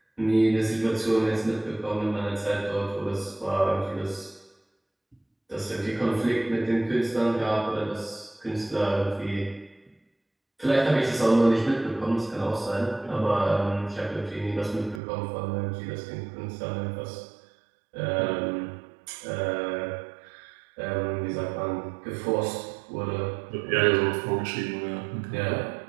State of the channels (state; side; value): drops out; left; at 15.0 s